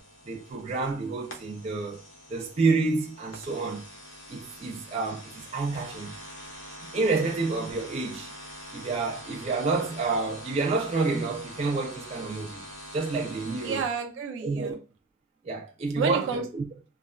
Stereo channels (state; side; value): quieter; left; 3.4 dB